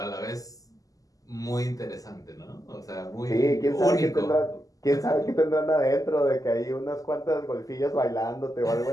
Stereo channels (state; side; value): late; right; 0.17 ms